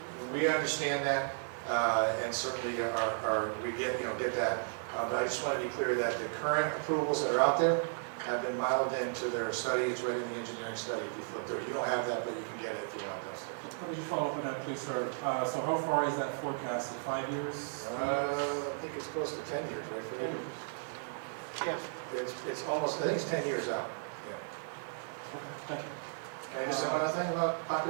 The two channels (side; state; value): left; silent; digital silence